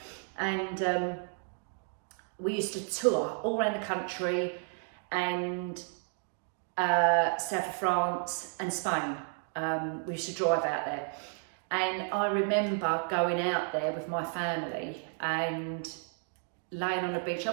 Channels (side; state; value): left; silent; 56 dB below the other